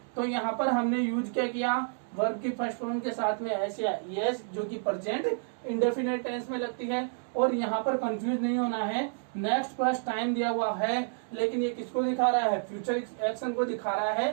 तो यहाँ पर हमने यूज क्या किया, वर्ब की फर्स्ट फॉर्म के साथ में एस या यस जो कि प्रेजेंट इंडेफिनिट टेंस में लगती है। और यहाँ पर कंफ्यूज नहीं होना है, नेक्स्ट प्लस टाइम दिया हुआ है लेकिन ये किसको दिखा रहा है, फ्यूचर एक्शन को दिखा रहा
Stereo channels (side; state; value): left; silent; digital silence